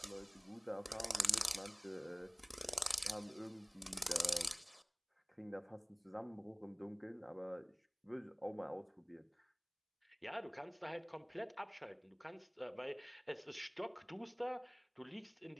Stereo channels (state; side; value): identical; both; correlation 1.00